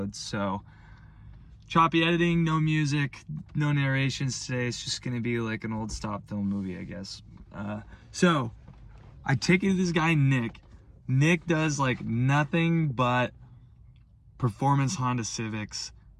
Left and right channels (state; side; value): identical; both; correlation 1.00